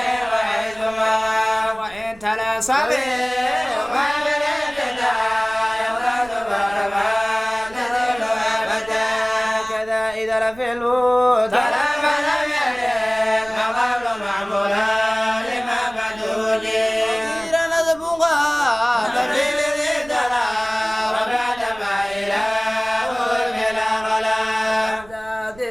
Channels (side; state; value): right; noise; rumble, 22 dB below the sound